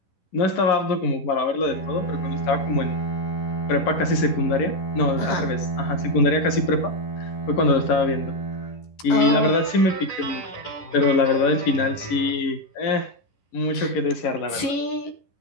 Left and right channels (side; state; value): right; late; 10 ms